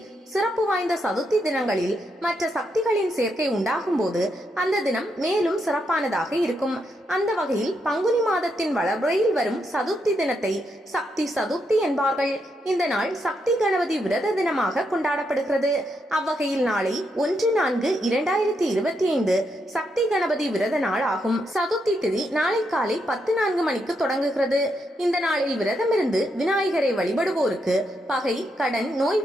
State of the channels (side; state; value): both; normal; correlation 0.80